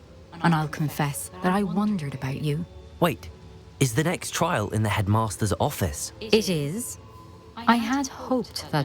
And I'll confess that I wondered about you. Wait, is the next trial in the headmaster's office? It is. I had hoped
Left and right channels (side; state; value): both; identical; correlation 1.00